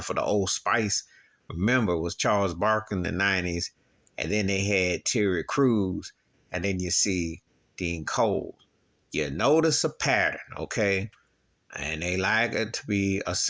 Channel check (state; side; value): identical; both; correlation 1.00